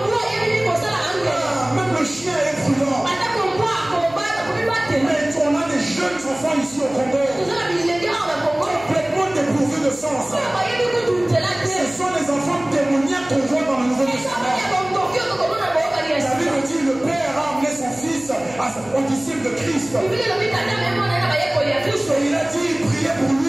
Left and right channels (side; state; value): right; noise; hum, 23 dB below the sound